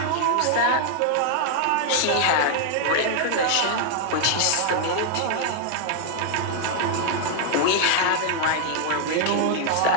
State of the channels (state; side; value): different; both; correlation 0.00